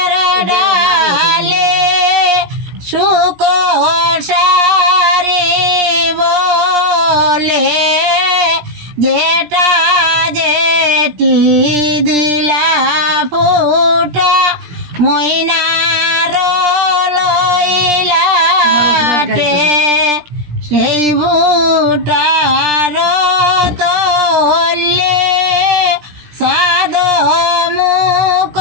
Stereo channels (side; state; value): left; late; 17 ms